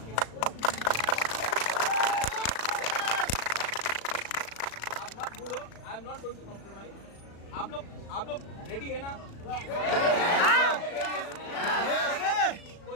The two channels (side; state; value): right; late; 36 ms